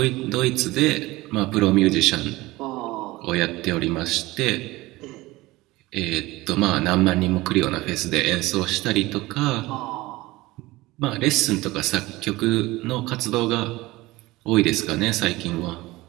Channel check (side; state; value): left; quieter; 19.7 dB